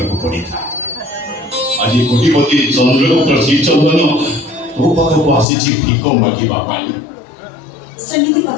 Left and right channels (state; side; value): drops out; right; at 5.5 s